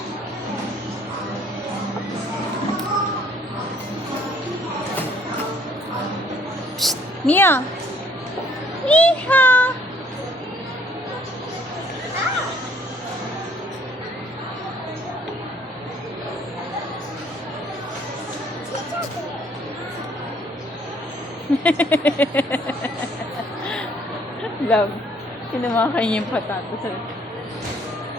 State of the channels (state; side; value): normal; both; correlation 0.61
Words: Mia! Iha! Love. Kinamakain niya yung patato sa...